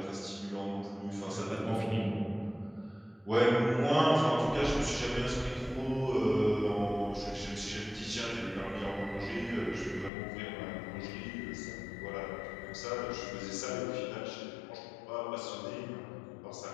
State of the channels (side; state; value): right; drops out; at 10.1 s